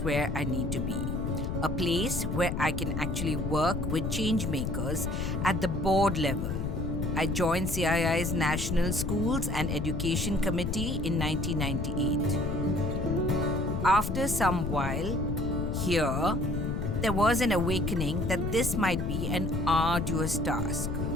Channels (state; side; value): noise; left; rumble, 2 dB below the sound